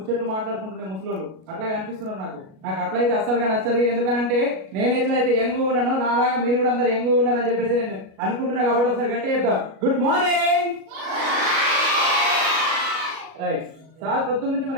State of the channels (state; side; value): late; left; 37 ms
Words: మాట్లాడుకుంటుండే ముసలోళ్ళు అట్లా కనిపిస్తున్నారు. నాకు అట్లయితే అస్సలుగా నచ్చదు. ఎందుకనంటే నేను ఎట్లయితే యంగ్ ఉన్నానో నాలాగా మీరు కూడా అందరు యంగ్ ఉన్నారని చెప్పేసి నేను అనుకుంటున్నా. కాబట్టి ఒకసారి గట్టి చెప్తాం, గుడ్ మార్నింగ్. రైట్, సార్ పొద్దున్న నుంచి